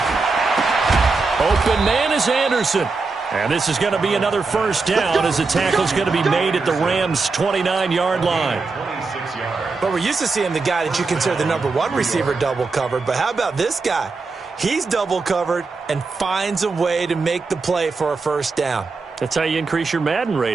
Open man is Anderson. And this is going to be another first down as the tackle's going to be made at the Rams' 29-yard line. But we're used to seeing the guy that you consider the number 1 receiver double covered. But how about this guy? He's double covered and finds a way to make the play for a first down. That's how you increase your Madden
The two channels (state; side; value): quieter; left; 4.1 dB